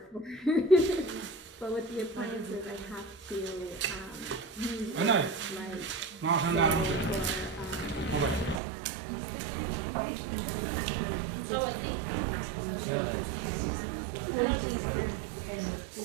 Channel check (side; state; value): left; drops out; at 8.6 s